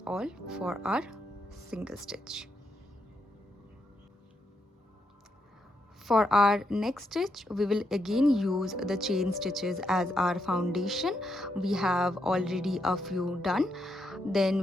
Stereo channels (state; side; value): normal; both; correlation 0.81